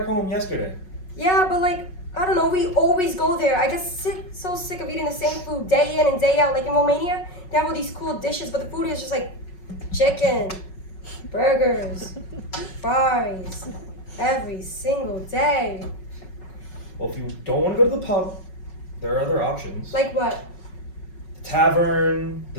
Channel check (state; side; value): late; right; 5.4 ms